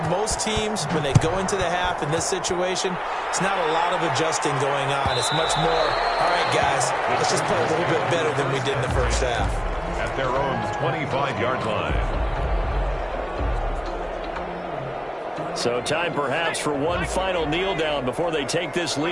most teams, when they go into the half in this situation, it's not a lot of adjusting going on. It's much more, all right, guys, let's just play a little bit better than we did in the first half. At their own 25-yard line. So time perhaps for one final kneel down before they take this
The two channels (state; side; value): identical; both; correlation 1.00